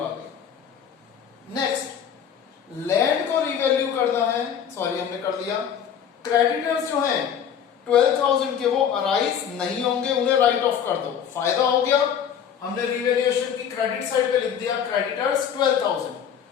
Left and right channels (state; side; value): quieter; right; 8.4 dB